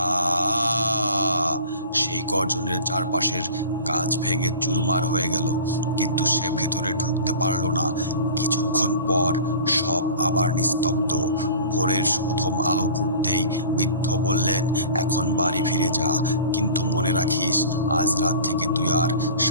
সেই গর্জনের চারপাশের কাঁচ ভেঙে চুরমার হয়ে গেল, কিন্তু সে ভেতরে ঢুকতে পারল না। কিছুক্ষণ পর সব আবার নিস্তব্ধ। ভোরের প্রথম আলো ফুটতেই বৃদ্ধ বললেন, এখন বাড়ি ফিরে যা, কিন্তু মনে রাখিস আজ রাত থেকে তুই আর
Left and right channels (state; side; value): inverted; both; correlation -0.41